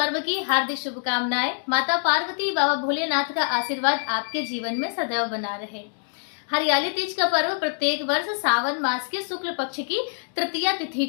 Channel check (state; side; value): silent; right; digital silence